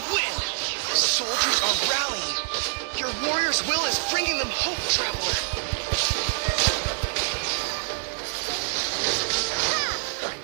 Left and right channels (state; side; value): silent; left; 61 dB below the other